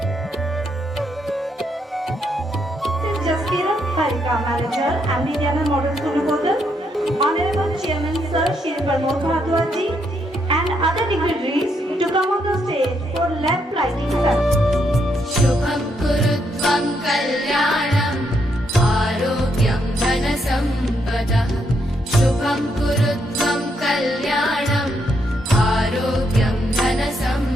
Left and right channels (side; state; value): both; normal; correlation 0.77